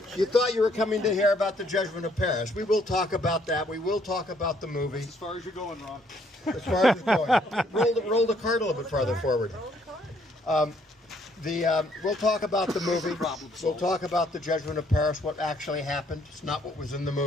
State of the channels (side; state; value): both; normal; correlation 0.67